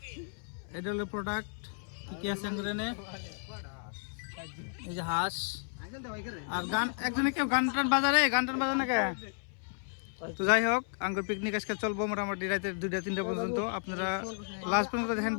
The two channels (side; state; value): right; silent; 56 dB below the other